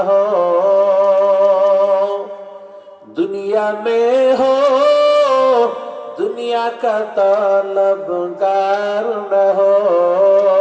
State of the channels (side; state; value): both; identical; correlation 1.00